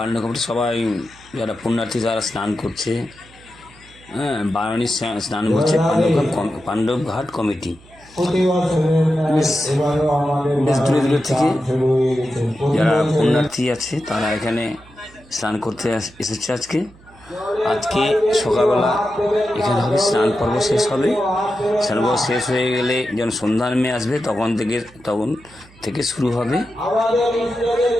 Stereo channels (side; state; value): right; noise; hum, 25 dB below the sound